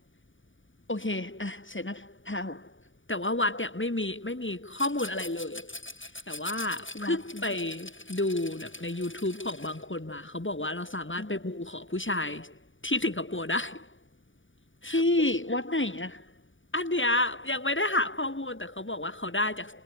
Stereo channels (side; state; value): right; late; 0.57 ms